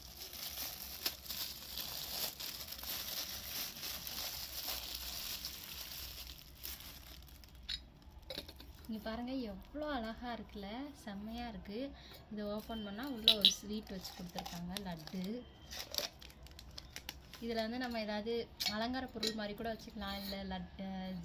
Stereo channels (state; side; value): identical; both; correlation 1.00